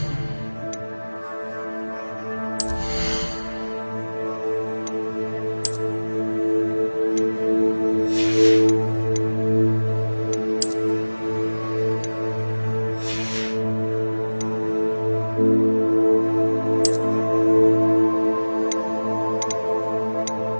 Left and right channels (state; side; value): inverted; both; correlation -1.00